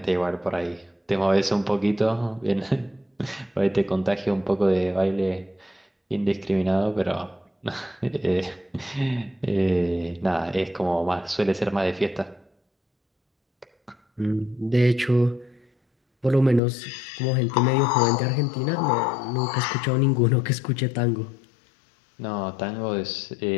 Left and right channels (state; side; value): drops out; right; at 16.6 s